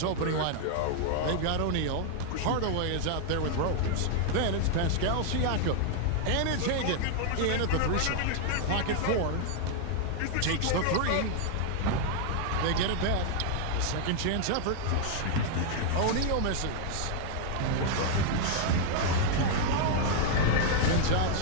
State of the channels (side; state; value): both; different; correlation 0.00